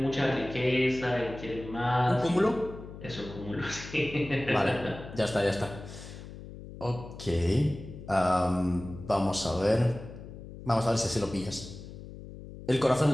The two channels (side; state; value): left; noise; hum, 13 dB below the sound